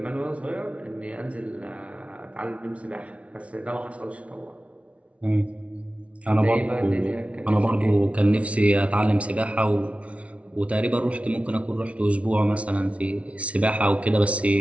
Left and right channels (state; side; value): late; left; 0.063 ms